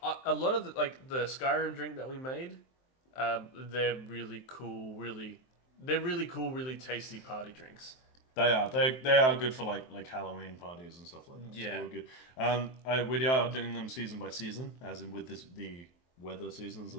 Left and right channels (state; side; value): late; right; 23 ms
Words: a lot of the Skyrim drink that we made, they're really cool, really tasty party drinks. They are good for like Halloween parties and stuff like that. Yeah. So we're good. We are doing them season by season, as in with the weather seasons